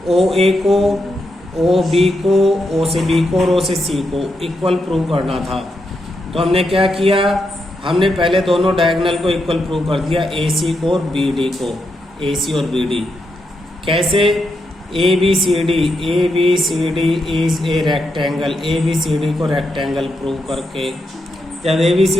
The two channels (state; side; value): normal; both; correlation 0.83